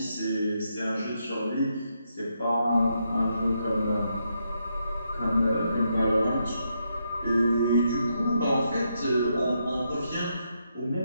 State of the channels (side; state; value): both; inverted; correlation -0.80